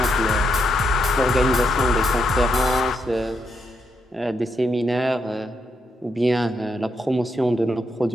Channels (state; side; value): normal; both; correlation 0.80